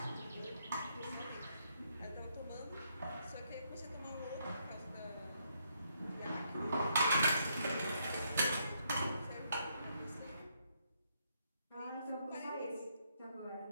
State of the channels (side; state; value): both; inverted; correlation -0.75